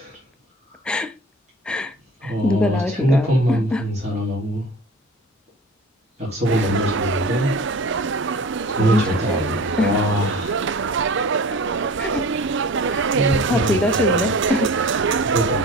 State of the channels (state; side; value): normal; both; correlation 0.40